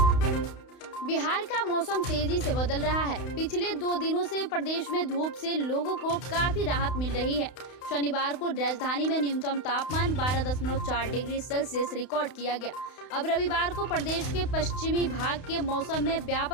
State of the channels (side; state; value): right; late; 31 ms